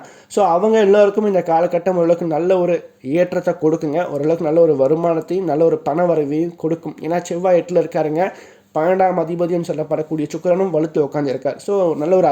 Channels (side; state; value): both; identical; correlation 1.00